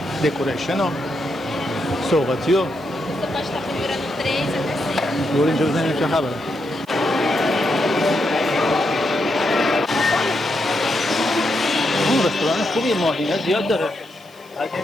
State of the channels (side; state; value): right; noise; hiss, 27 dB below the sound